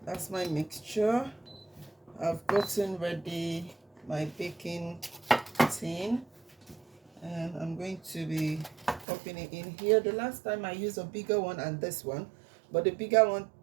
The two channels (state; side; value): drops out; left; at 9.1 s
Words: That's my mixture. I've gotten ready my baking tin, and I'm going to be popping it in here. The last time I used a bigger one and this one, but the bigger one